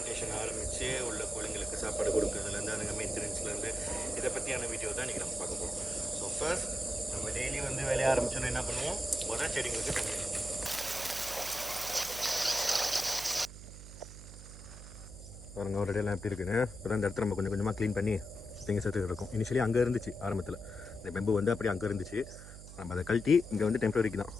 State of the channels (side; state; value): right; noise; hum, 14 dB below the sound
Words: ஆரம்பித்து உள்ள கோழிங்களுக்கு சாப்பாடு கொடுக்குறதுலேருந்து அதுங்க மெயின்டெனன்ஸ்லேருந்து இதை பற்றியான வீடியோ தான் இன்றைக்கி நம்ம பார்க்க போகிறோம். ஸோ ஃபர்ஸ்ட் நம்ம டெய்லி வேலையை ஆரம்பிச்சோன்னா என்ன பண்ணுவோம், முதல் செடிங்களுக்கு தண்ணி அடிப்போம். பாருங்க ஒரு இடையெல்லாம் எப்படி இருக்குன்னு. இப்போ இந்த இடத்துல நம்ம கொஞ்சம் கொஞ்சமாக க்ளீன் பண்ணி நீங்கள் சேர்த்து இருக்கும். இனிஷியலி அங்கே இருந்துச்சு ஆரம்பத்தில் இந்த பெம்பு அப்படி அங்கே இருந்துச்சு. நம்ம அதை கழட்டி இங்கே டெம்பரரிக்கு தான்